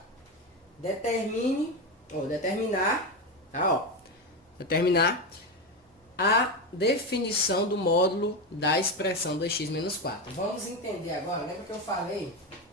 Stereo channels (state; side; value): normal; both; correlation 0.15